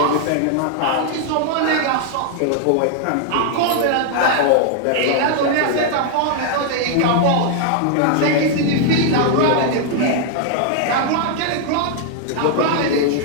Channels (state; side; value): different; both; correlation 0.00